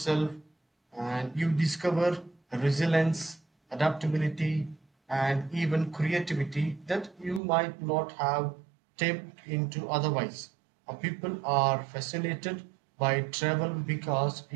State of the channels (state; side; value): drops out; left; at 7.4 s